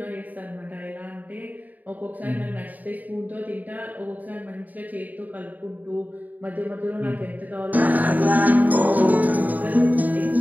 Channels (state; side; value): late; left; 0.080 ms